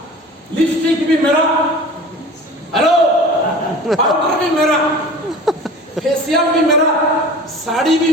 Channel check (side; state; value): both; normal; correlation 0.39